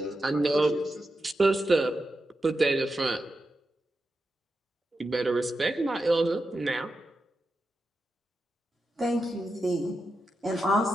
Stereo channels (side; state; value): both; normal; correlation 0.89